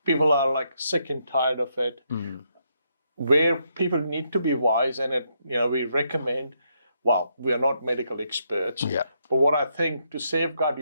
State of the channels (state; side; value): inverted; both; correlation -0.77